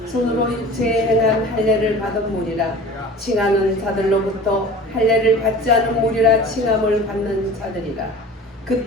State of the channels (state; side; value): normal; both; correlation 0.40